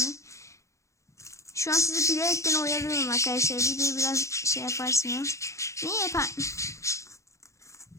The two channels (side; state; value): right; late; 0.15 ms